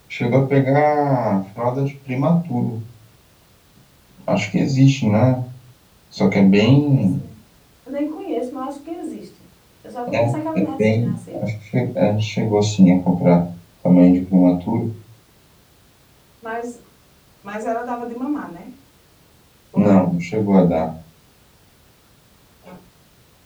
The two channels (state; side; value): identical; both; correlation 1.00